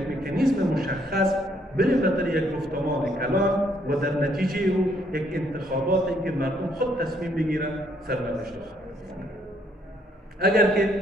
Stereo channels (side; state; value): both; normal; correlation 0.69